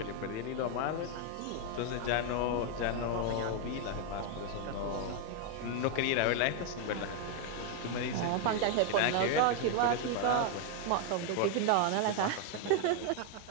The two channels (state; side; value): different; both; correlation 0.00